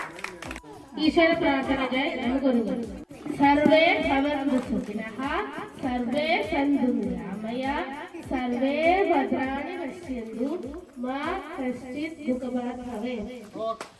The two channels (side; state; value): both; identical; correlation 1.00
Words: ഈശ്വര പ്രാർത്ഥനയ്ക്കായി നമുക്കൊരുങ്ങും. സർവേ ഭവന്തു സുഖിനഃ, സർവേ സന്തു നിരാമയ, സർവേ ഭദ്രാണി പശ്യന്തു, മാ കശ്ചിത് ദുഃഖഭാഗ് ഭവേത്.